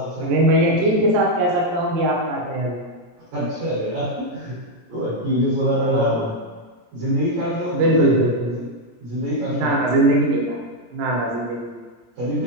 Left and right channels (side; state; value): left; late; 17 ms